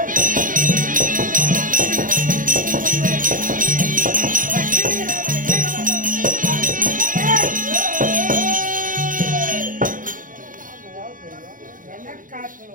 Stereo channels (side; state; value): left; late; 0.39 ms